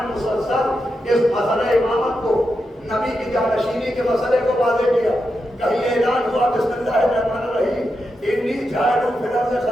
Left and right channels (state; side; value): normal; both; correlation 0.87